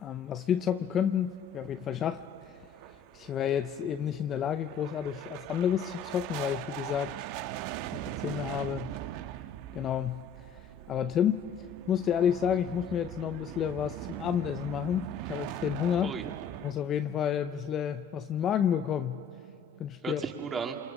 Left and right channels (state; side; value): quieter; right; 6.4 dB